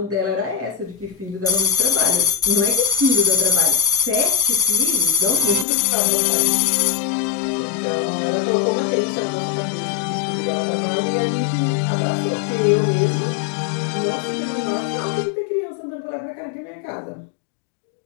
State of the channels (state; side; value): drops out; right; at 5.7 s